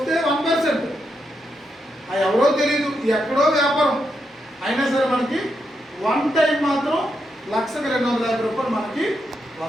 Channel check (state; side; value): normal; both; correlation 0.82